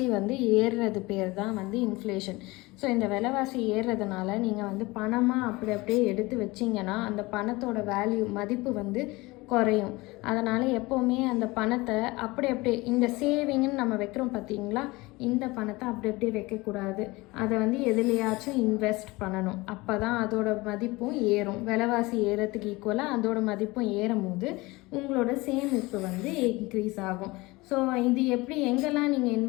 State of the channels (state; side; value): quieter; right; 22.3 dB